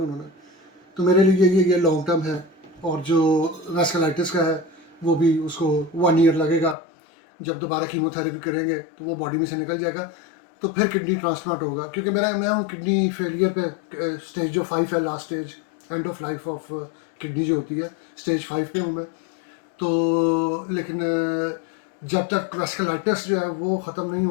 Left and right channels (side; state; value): right; drops out; at 6.8 s